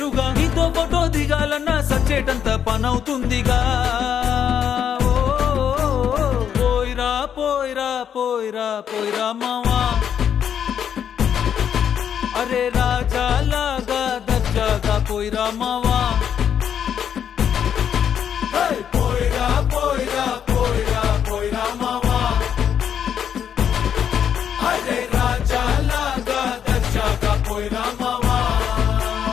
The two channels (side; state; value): right; quieter; 8.6 dB